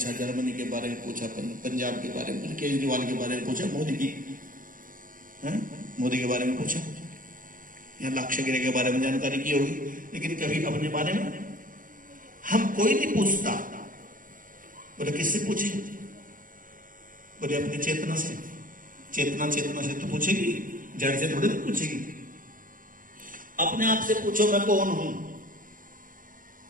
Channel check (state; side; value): late; left; 0.40 ms